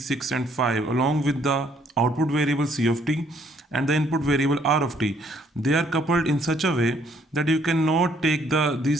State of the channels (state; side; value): normal; both; correlation 0.65